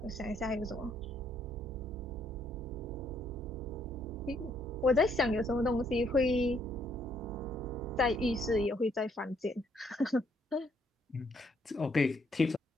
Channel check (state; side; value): normal; both; correlation 0.70